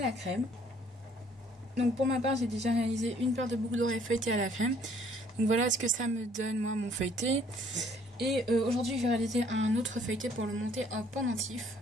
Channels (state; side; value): normal; both; correlation 0.61